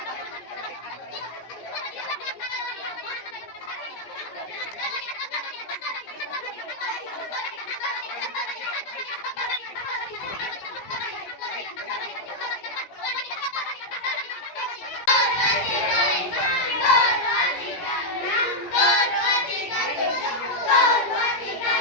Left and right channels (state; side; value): late; right; 16 ms